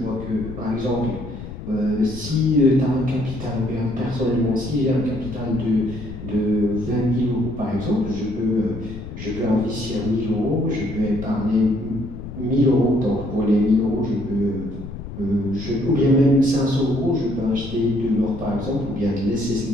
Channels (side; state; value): left; noise; rumble, 11 dB below the sound